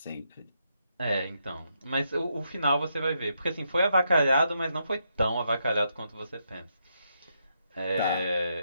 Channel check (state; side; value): inverted; both; correlation -0.80